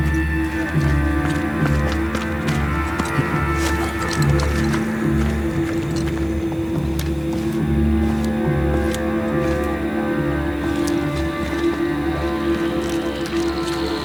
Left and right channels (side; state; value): right; noise; hiss, 28 dB below the sound